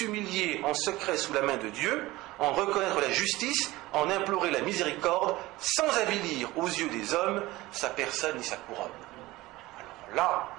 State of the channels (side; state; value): left; quieter; 19.0 dB